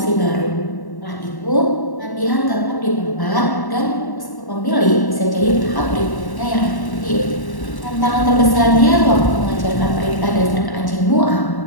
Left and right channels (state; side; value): late; right; 1.1 ms